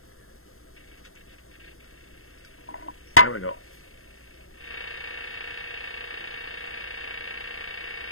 There we go.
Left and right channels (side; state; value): right; late; 0.62 ms